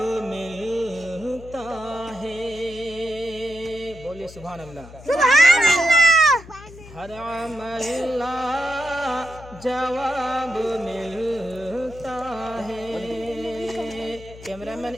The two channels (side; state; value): left; noise; hum, 17 dB below the sound